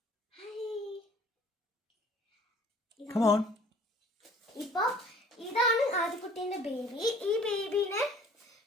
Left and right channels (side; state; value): both; normal; correlation 0.52